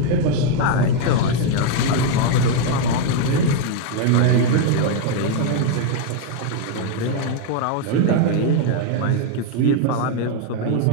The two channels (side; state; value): both; different; correlation 0.01